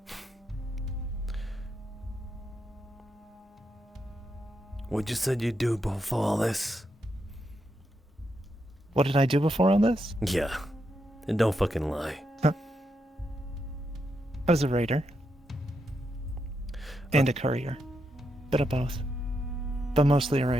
What you said you'd do before all this? What did I do before all this? Yeah. And don't fucking lie. I was a raider. And a courier. Bit of both. But mostly a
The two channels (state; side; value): normal; both; correlation 0.82